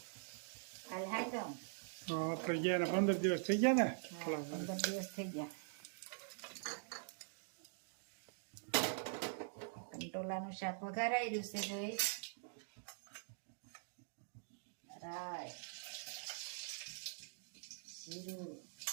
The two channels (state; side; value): silent; left; digital silence